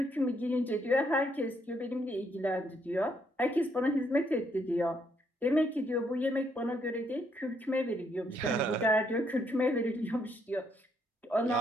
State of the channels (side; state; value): both; normal; correlation 0.73